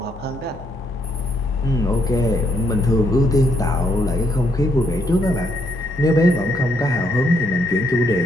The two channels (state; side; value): normal; both; correlation 0.74